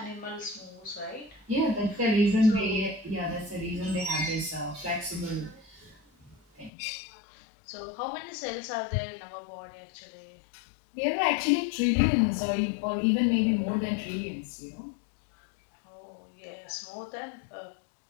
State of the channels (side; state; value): right; drops out; at 6.7 s